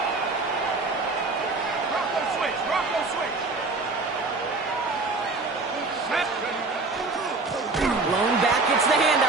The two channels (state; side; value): quieter; left; 3.6 dB